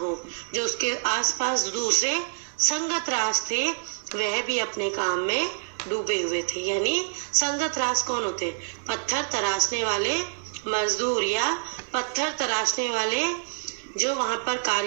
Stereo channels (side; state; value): left; silent; 60 dB below the other